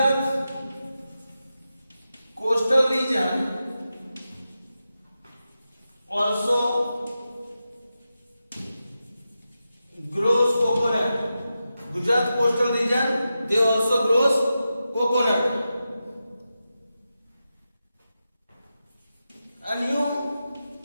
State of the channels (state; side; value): inverted; both; correlation -0.90